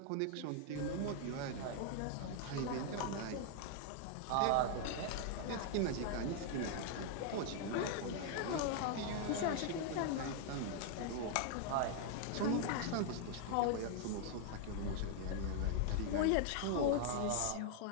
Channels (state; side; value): different; both; correlation 0.00